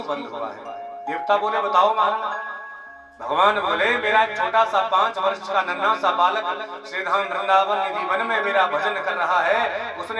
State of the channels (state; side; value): identical; both; correlation 1.00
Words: बंद हुआ है। देवता बोले बताओ महाराज। भगवान बोले मेरा एक छोटा सा 5 वर्ष का नन्हा सा बालक श्रीधाम वृंदावन निधि वन में मेरा भजन कर रहा है,